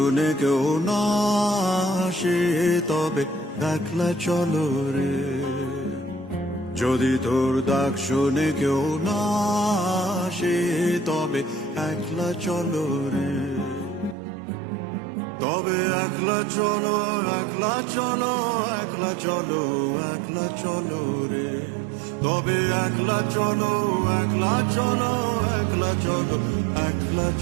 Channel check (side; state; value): left; drops out; at 14.2 s